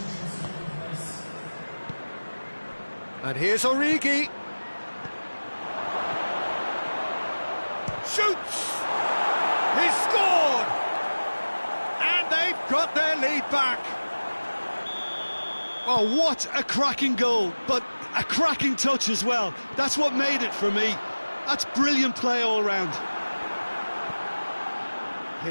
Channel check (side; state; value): both; inverted; correlation -1.00